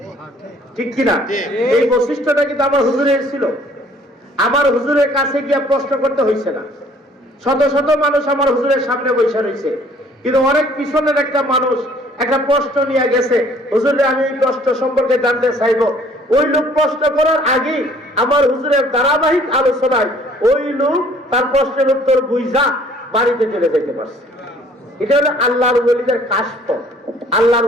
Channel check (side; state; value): both; normal; correlation 0.57